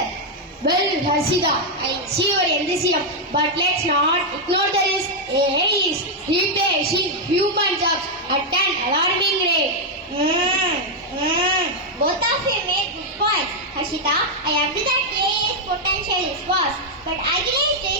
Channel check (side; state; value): both; normal; correlation -0.01